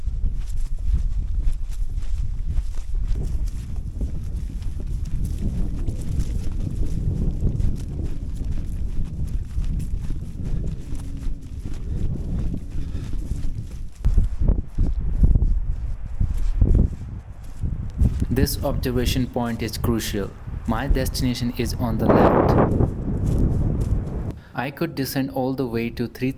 This observation point is crucial. My destination is on the left. I could descend all the way to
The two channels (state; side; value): identical; both; correlation 1.00